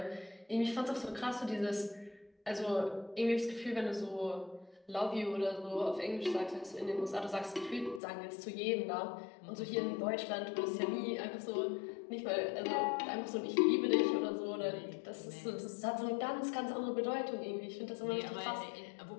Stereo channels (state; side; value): drops out; right; at 8.0 s